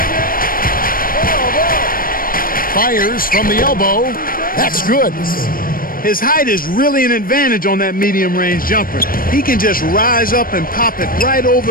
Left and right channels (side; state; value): right; late; 0.41 ms